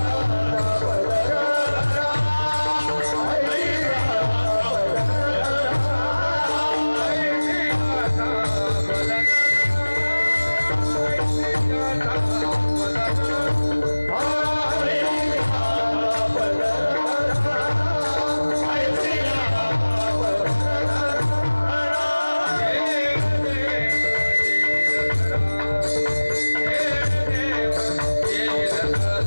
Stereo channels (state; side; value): inverted; both; correlation -1.00